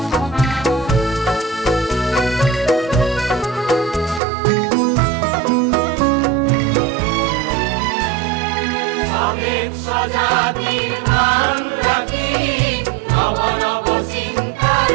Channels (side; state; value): left; drops out; at 4.2 s